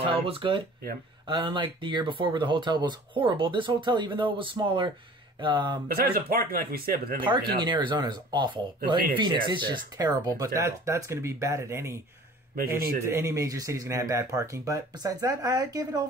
was good. Yeah. Unlike the year before where the hotel was horrible, this hotel, even though it was smaller. Besides the parking, like we said, but then parking in Arizona is awful. In Phoenix, it's just terrible. But that's going to be bad at any major city is going to have bad parking. But besides that, I gave it an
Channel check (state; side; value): normal; both; correlation 0.47